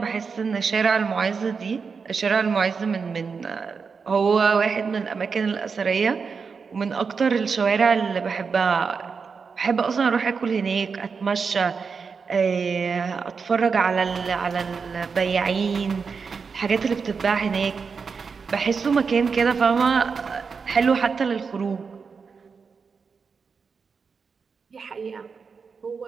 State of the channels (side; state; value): left; quieter; 5.4 dB